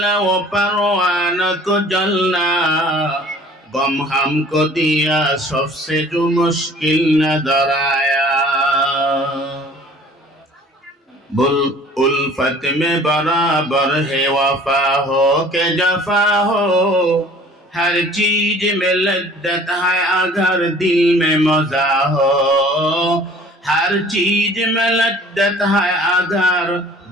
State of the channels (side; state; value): both; normal; correlation 0.50